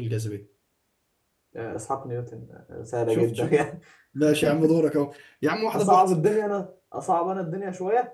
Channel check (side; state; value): both; identical; correlation 1.00